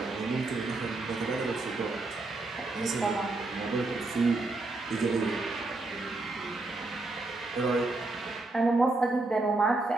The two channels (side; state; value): left; quieter; 3.1 dB